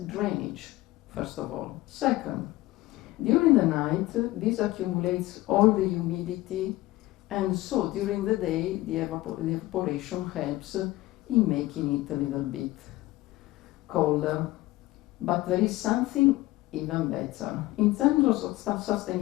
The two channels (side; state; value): right; quieter; 18.1 dB